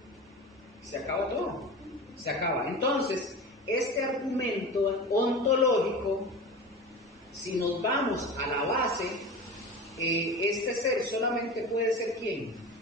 se acaba todo, se acaba. Entonces, este argumento ontológico, si nos vamos a la base, este ser solamente puede ser ¿quién?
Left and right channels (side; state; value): both; normal; correlation 0.31